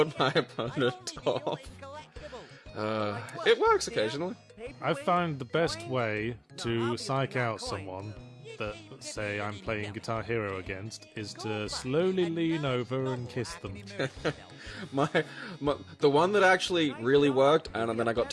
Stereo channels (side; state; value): both; identical; correlation 1.00